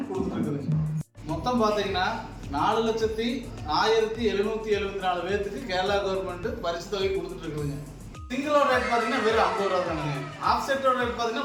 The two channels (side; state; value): both; identical; correlation 1.00